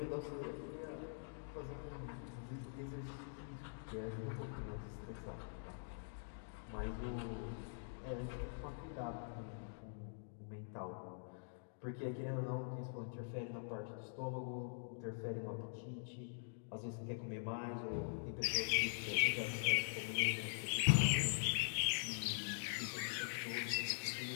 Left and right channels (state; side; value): silent; right; digital silence